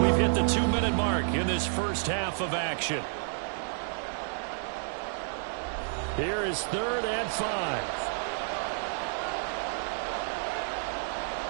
we've hit the 2-minute mark in this first half of action. Here is 3rd and 5.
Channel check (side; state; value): left; silent; digital silence